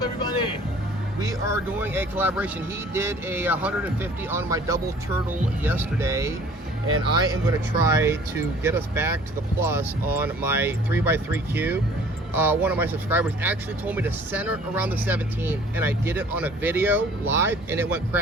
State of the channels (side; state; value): both; normal; correlation 0.52